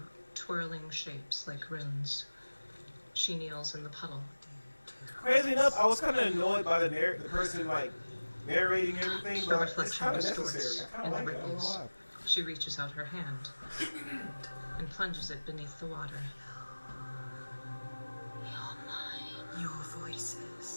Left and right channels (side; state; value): both; inverted; correlation -1.00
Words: twirling shapes like runes. She kneels in the puddle. Crazy enough, I was kind of annoyed by the person like narrating everything, The but it's reflection kind of distorts necessary. I kind and of like it. I don't know ripples. why. She reaches out her hand and plunges it beneath the water. You're mine. Your